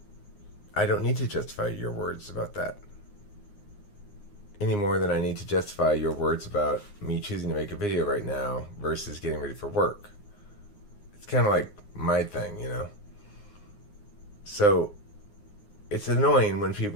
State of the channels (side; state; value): right; late; 9.7 ms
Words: I don't need to justify your words about that any more than I need to justify your words about me choosing to make a video right now versus getting ready for work. It's kind of like my thing, So it's annoying when